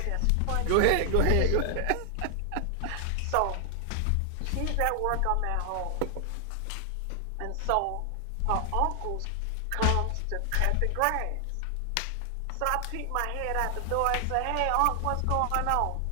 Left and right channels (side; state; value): both; different; correlation 0.00